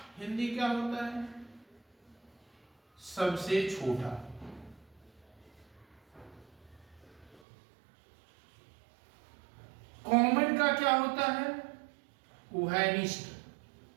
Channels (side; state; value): left; drops out; at 7.4 s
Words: हिंदी क्या होता है? सबसे छोटा। कॉमन का क्या होता है? उभयनिष्ठ।